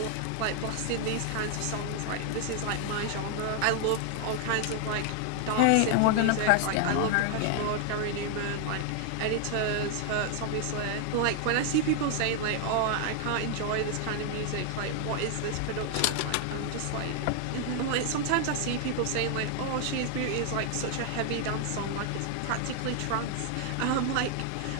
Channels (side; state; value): both; different; correlation 0.00